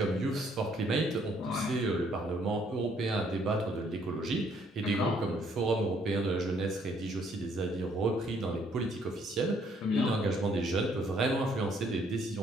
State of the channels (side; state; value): both; normal; correlation 0.66